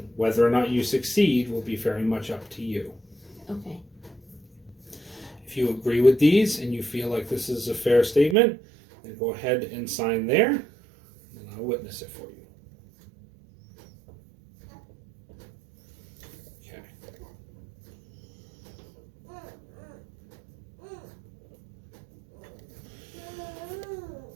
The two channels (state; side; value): drops out; left; at 8.3 s